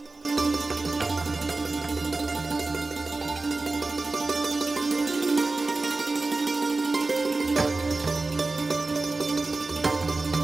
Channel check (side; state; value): left; quieter; 3.5 dB